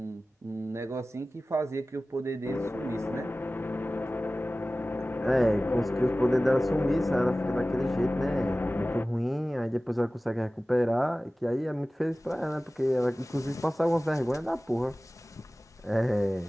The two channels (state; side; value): normal; both; correlation 0.97